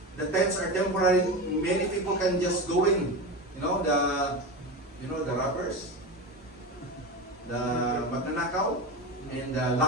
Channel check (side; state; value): both; normal; correlation 0.23